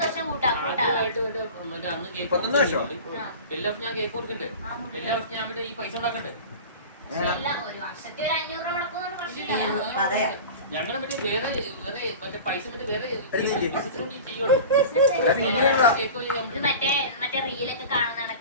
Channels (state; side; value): inverted; both; correlation -0.35